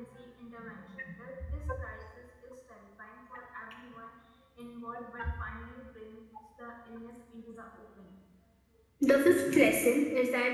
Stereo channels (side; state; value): both; identical; correlation 1.00